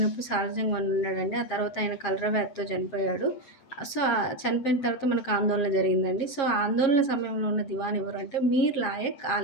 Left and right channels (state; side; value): late; right; 7.4 ms